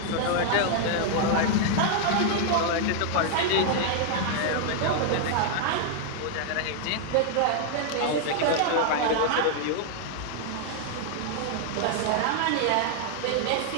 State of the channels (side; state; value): both; different; correlation 0.00